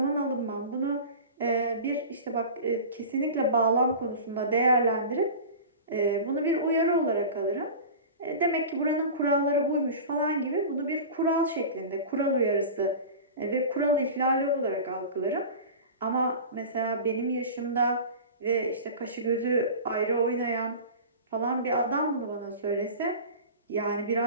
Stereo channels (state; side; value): inverted; both; correlation -0.34